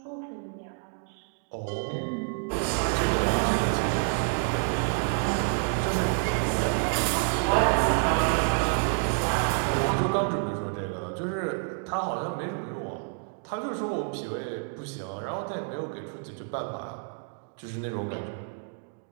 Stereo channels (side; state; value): left; silent; 59 dB below the other